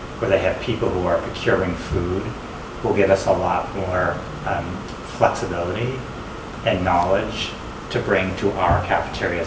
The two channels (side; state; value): both; identical; correlation 1.00